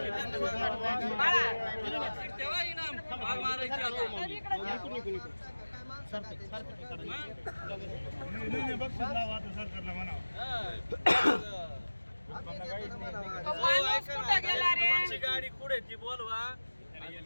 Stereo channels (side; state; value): both; inverted; correlation -1.00